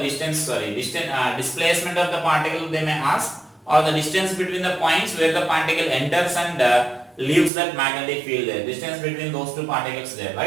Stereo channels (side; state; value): left; drops out; at 7.5 s